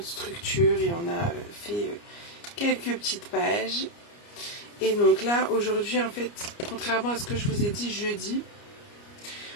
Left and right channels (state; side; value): late; right; 29 ms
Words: structure et on a fait quelques petites pages. Et donc là, aujourd'hui, en fait, contrairement à ce que je vous ai dit jeudi,